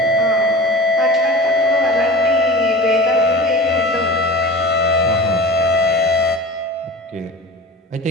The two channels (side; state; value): both; normal; correlation 0.35